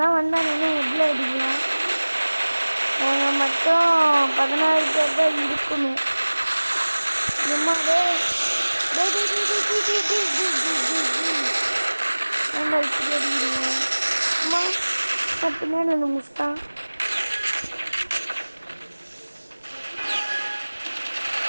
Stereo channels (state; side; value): inverted; both; correlation -1.00